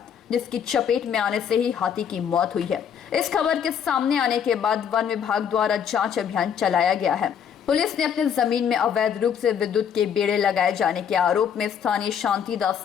जिसकी चपेट में आने से ही हाथी की मौत हुई है। इस खबर के सामने आने के बाद वन विभाग द्वारा जांच अभियान चलाया गया है। पुलिस ने अपने जमीन में अवैध रूप से विद्युत के बेड़े लगाए जाने के आरोप में स्थानीय शांतिदास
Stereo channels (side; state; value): right; quieter; 8.0 dB